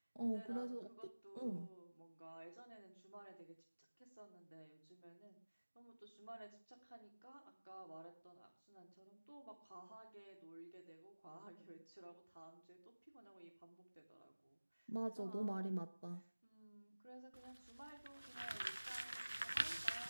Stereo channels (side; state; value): both; inverted; correlation -1.00